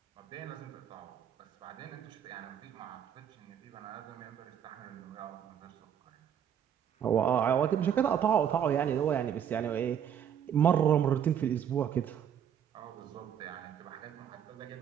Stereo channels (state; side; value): quieter; left; 8.9 dB